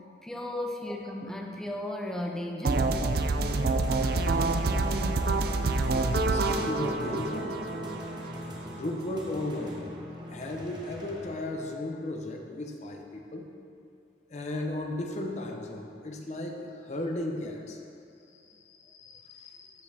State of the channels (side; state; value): both; normal; correlation 0.56